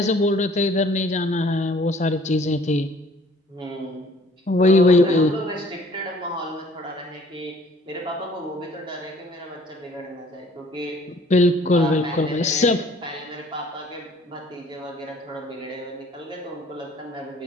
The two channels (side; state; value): both; normal; correlation 0.56